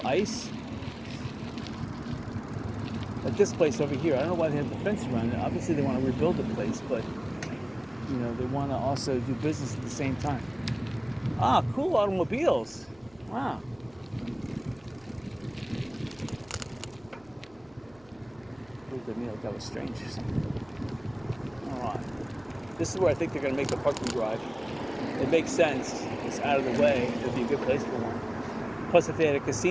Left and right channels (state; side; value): noise; right; hum, 28 dB below the sound